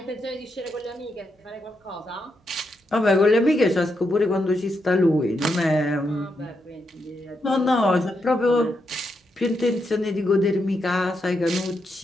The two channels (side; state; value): both; normal; correlation 0.82